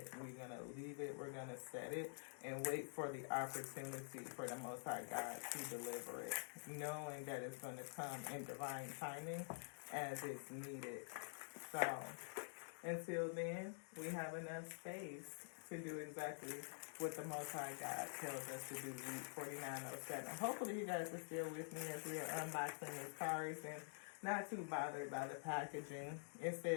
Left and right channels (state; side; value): silent; right; digital silence